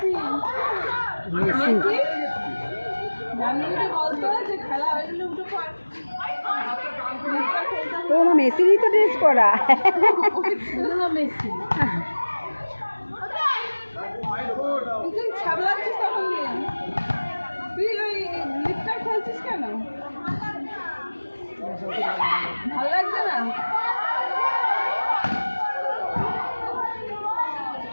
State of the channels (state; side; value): inverted; both; correlation -1.00